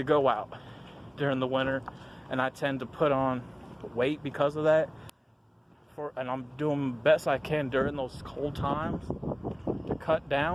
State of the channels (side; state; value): both; identical; correlation 1.00